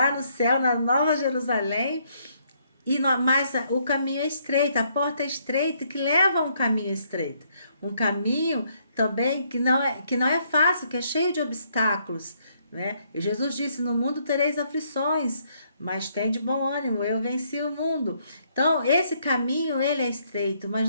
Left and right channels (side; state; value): both; inverted; correlation -0.70